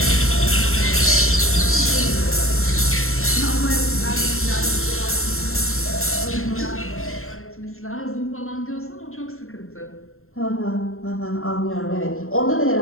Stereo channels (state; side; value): late; right; 0.62 ms